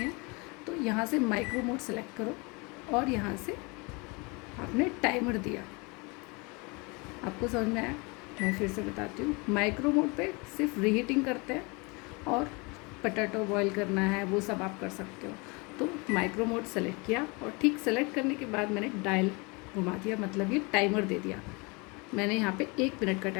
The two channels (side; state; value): right; quieter; 28.5 dB